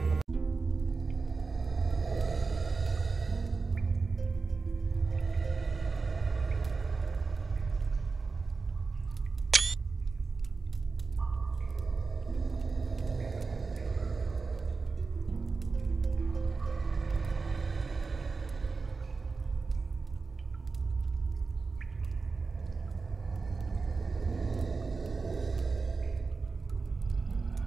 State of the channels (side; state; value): left; quieter; 4.3 dB